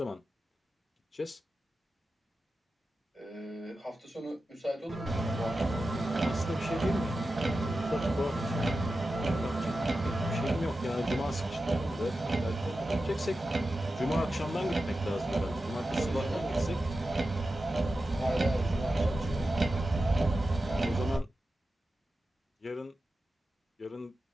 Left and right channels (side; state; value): both; normal; correlation 0.92